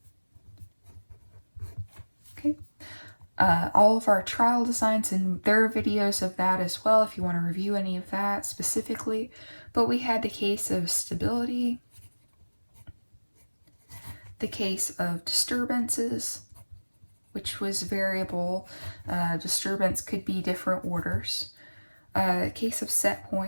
Okay. All of our trial designs, and there are videos of that as well if you want to review any of that specifically. But we had the case of stability, the case of disturbances, which was variable. Disturbance could be different orders. case of set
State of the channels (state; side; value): inverted; both; correlation -1.00